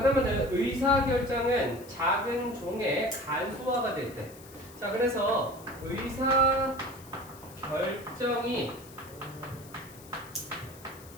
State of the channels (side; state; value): left; noise; hiss, 20 dB below the sound